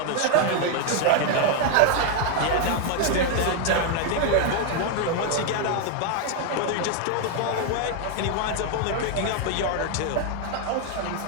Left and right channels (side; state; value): both; different; correlation 0.01